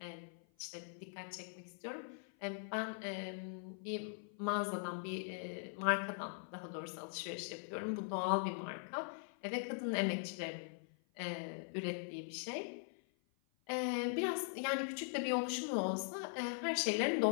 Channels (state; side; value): silent; right; 50 dB below the other